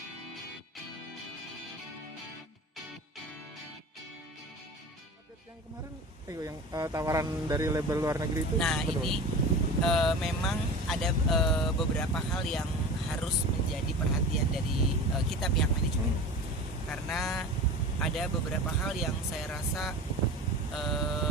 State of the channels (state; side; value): normal; both; correlation 0.34